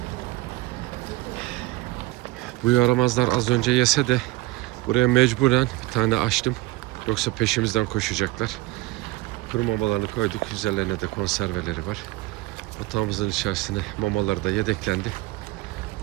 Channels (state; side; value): quieter; left; 19.3 dB